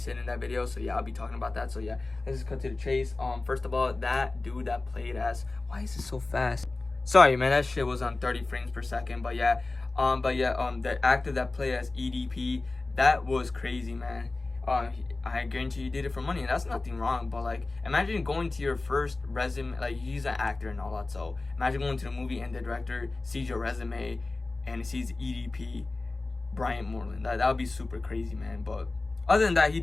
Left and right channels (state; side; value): quieter; right; 3.3 dB